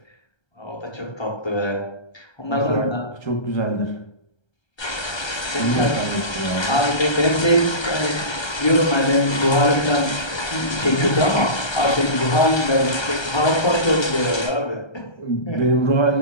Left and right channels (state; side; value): late; right; 1.3 ms